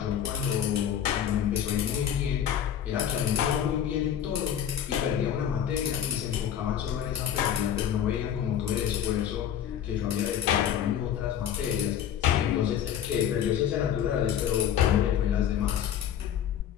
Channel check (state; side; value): quieter; right; 9.6 dB